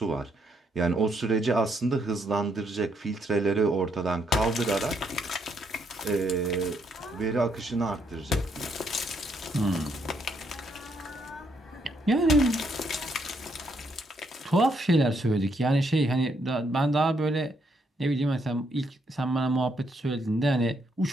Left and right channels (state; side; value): normal; both; correlation 0.74